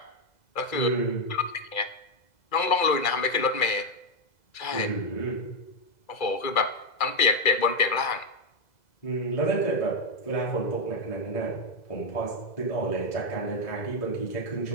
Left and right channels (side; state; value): right; late; 2.0 ms